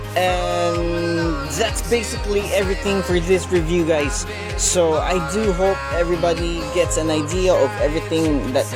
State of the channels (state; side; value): identical; both; correlation 1.00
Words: And that's basically everything for this review, guys. So I do hope everybody gets an idea of everything that